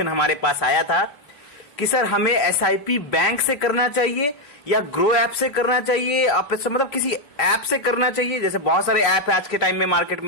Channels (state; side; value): late; right; 3.3 ms